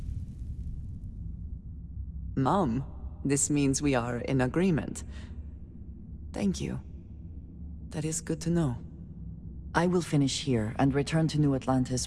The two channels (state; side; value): identical; both; correlation 1.00